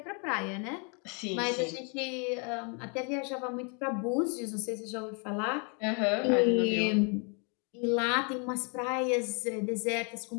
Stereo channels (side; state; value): right; quieter; 36.4 dB